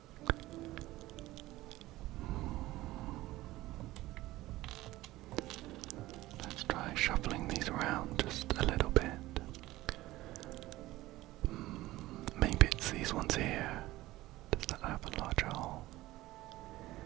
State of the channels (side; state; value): left; quieter; 17.3 dB